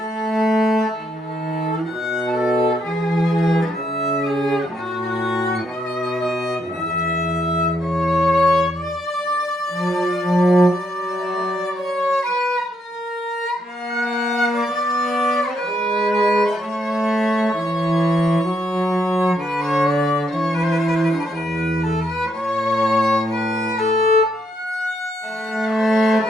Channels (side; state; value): both; normal; correlation 0.76